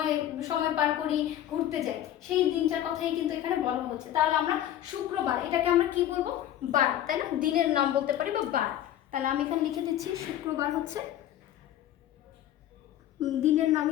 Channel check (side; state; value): right; quieter; 12.0 dB